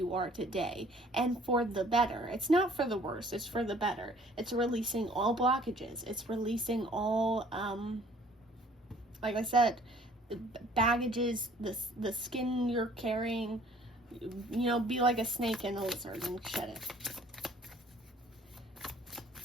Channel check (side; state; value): both; normal; correlation 0.56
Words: are today, and for the better. It's not for the worse, it's for the better. It's releasing all blockages. It's releasing all, like I said, the baggages, the skin you're carrying. You know, be like a snake and a lizard and shed it.